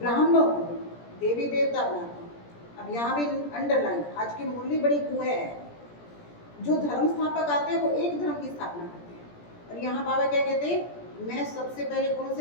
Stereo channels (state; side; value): late; right; 17 ms